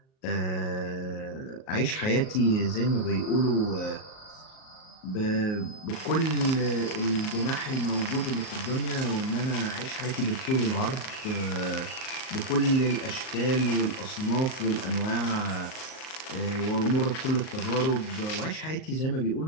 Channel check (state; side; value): late; right; 38 ms